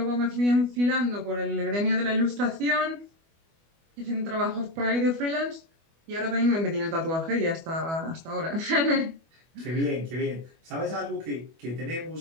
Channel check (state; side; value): late; left; 25 ms